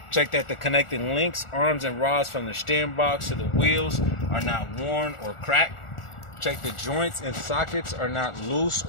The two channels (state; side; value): late; right; 1.4 ms